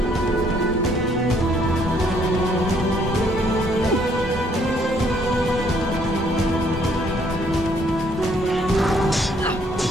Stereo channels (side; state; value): both; normal; correlation 0.66